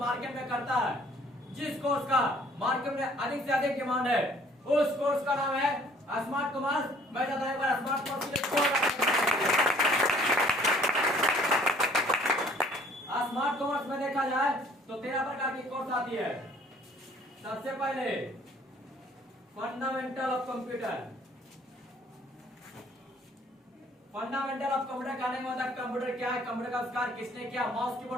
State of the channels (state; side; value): normal; both; correlation 0.57